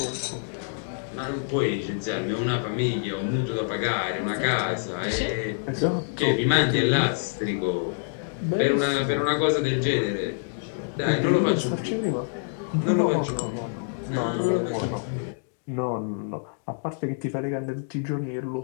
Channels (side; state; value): right; silent; digital silence